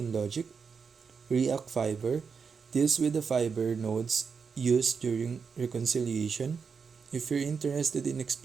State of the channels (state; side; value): quieter; left; 5.7 dB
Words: logic. React Fiber deals with the fiber nodes used during reconciliation. If you're interested in